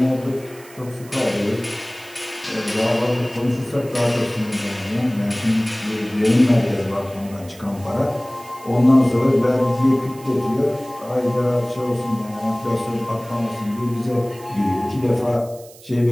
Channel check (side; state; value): right; noise; hiss, 22 dB below the sound